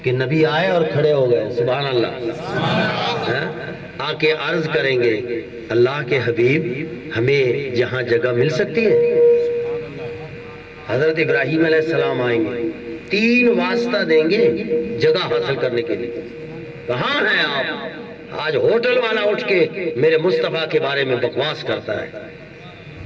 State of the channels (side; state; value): both; identical; correlation 1.00